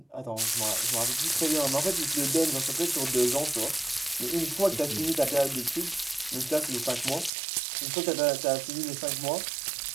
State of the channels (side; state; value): left; drops out; at 7.3 s